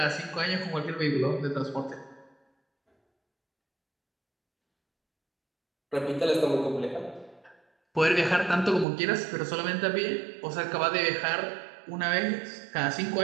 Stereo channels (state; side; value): drops out; left; at 8.8 s